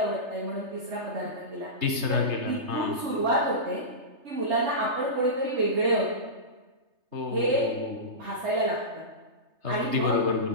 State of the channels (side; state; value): left; late; 3.3 ms